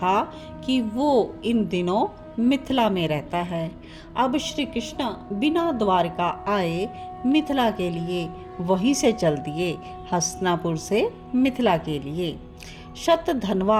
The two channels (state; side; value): identical; both; correlation 1.00